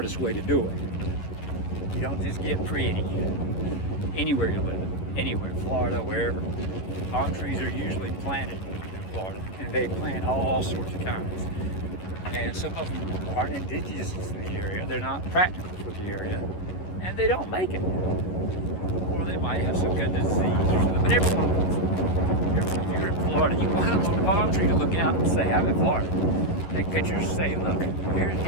way to do it. You don't just get pretty anywhere you live. Anywhere, Florida, wherever. Palm trees are usually planted in Florida, and they plant all sorts of kinds. And some of them aren't indigenous to the area, they're not practical for the area, and they don't make it. Or they might have some kind of disease or something, but everyone wants it. If you're in Florida, you want a little palm tree to look out and say, I'm in Florida. Take pictures, say, look,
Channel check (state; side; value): late; right; 11 ms